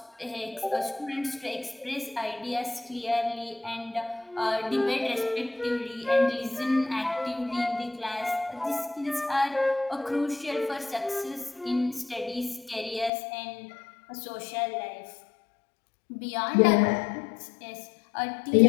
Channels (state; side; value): drops out; right; at 13.1 s